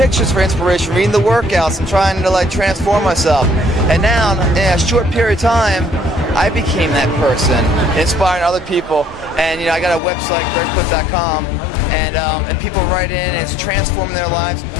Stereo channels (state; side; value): drops out; right; at 10.0 s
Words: for inspiration, reading the workouts, and trying to like transform myself. And now, in a short period of time, I became that person, inspiring other people. And you know, I got a website, gregplitt.com, and people write in, and it's transforming their lives.